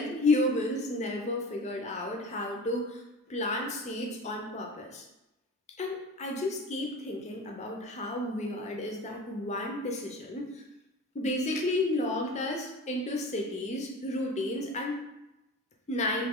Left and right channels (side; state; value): both; normal; correlation 0.35